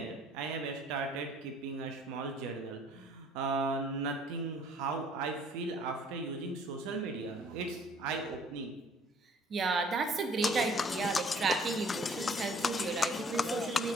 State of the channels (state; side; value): normal; both; correlation 0.57